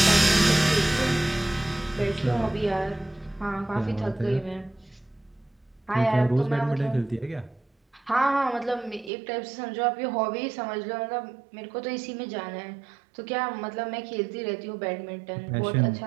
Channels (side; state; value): left; drops out; at 9.1 s